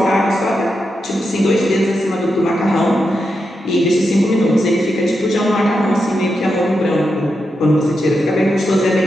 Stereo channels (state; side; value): normal; both; correlation 0.86